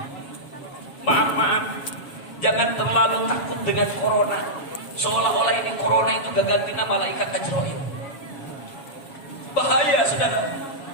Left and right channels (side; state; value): right; late; 7.3 ms